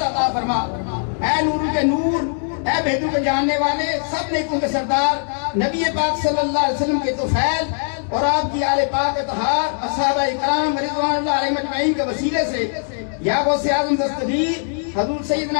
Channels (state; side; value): silent; right; digital silence